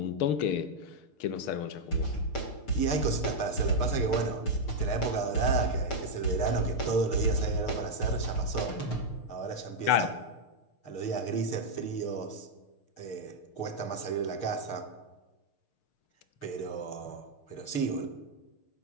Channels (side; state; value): right; late; 6.6 ms